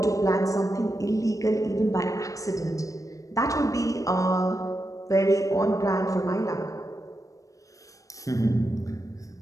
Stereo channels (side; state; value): right; late; 0.16 ms